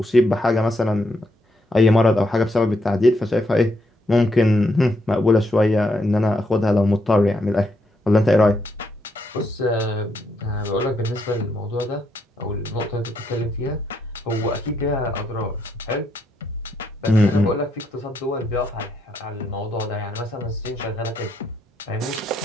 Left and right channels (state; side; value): normal; both; correlation 0.77